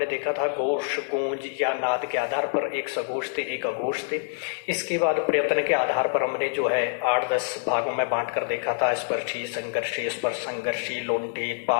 देखा था घोष गूंज या नाद के आधार पर, एक सघोष थे एक अघोष थे। इसके बाद प्रयत्न के आधार पर हमने जो है 8-10 भागों में बांट कर देखा था, स्पर्शी, संघर्षी, स्पर्श संघर्षी, लोंठित,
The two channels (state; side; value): silent; right; 61 dB below the other